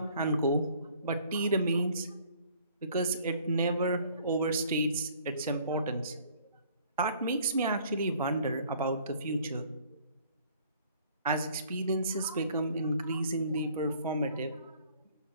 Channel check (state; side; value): inverted; both; correlation -0.56